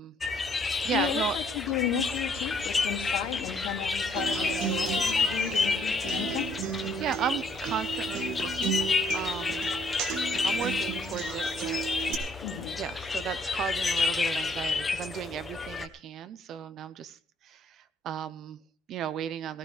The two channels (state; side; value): normal; both; correlation 0.65